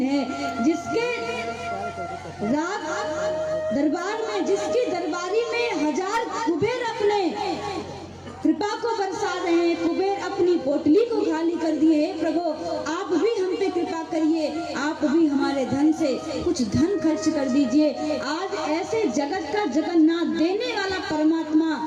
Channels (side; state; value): both; identical; correlation 1.00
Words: है। जिसके रात दरबार में, जिसकी दरबारी में 1000 कुबेर अपने कृपा को बरसा रहे हैं। कुबेर अपनी पोटली को खाली कर दिए। हे प्रभु, आप भी हम पे कृपा करिए, आप भी हमारे धन से कुछ धन खर्च कर दीजिए। आज ऐसे जगत का जगन्नाथ देने वाला परमात्मा